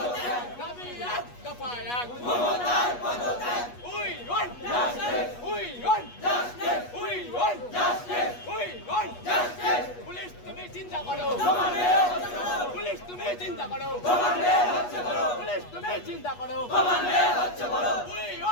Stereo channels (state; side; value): late; right; 8.3 ms